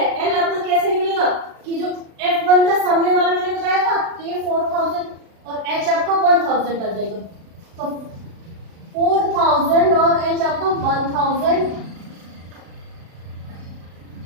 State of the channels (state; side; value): late; left; 36 ms